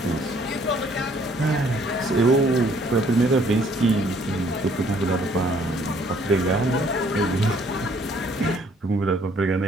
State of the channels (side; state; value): both; normal; correlation 0.63